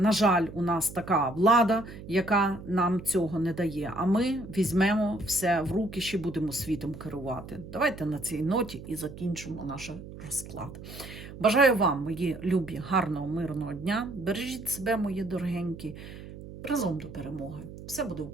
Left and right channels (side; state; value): right; noise; hum, 13 dB below the sound